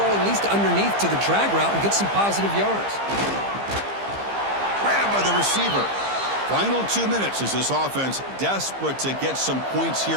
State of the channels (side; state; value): left; late; 15 ms